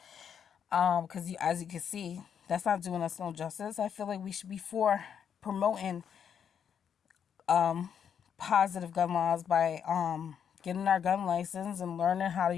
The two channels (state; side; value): quieter; right; 8.0 dB